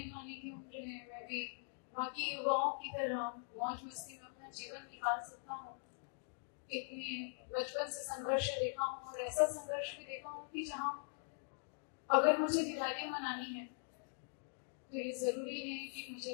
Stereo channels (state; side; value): silent; right; digital silence